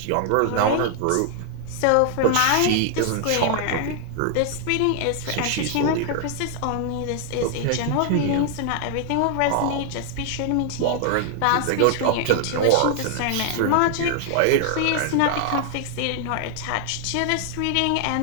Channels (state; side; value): different; both; correlation 0.00